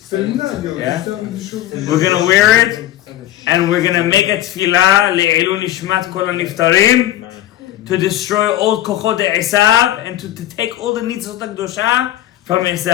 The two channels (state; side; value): quieter; right; 13.7 dB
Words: Yeah. We're gonna wear it, and we're gonna make a tefillah le'ilun nishmat kol haniftarim, to destroy all kochot Esav and to take all the nitzot HaKdosha from